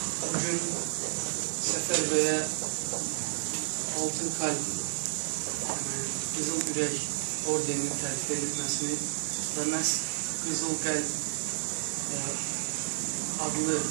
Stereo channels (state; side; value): silent; left; digital silence